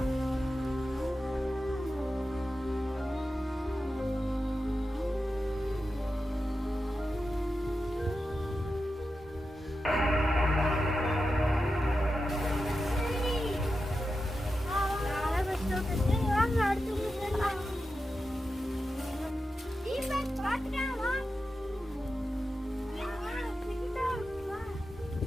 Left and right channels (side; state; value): both; normal; correlation 0.91